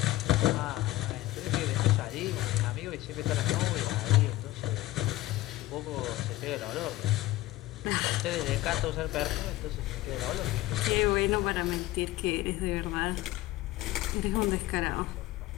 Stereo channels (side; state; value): right; quieter; 17.0 dB